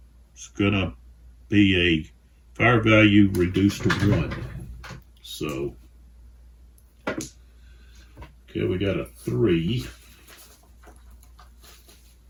is going to be a fire value reduced to 1. So, okay, we got a 3,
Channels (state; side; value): identical; both; correlation 1.00